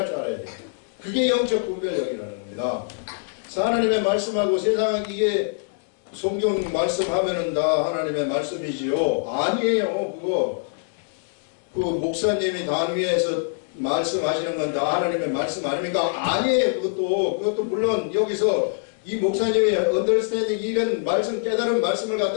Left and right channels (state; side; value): silent; right; digital silence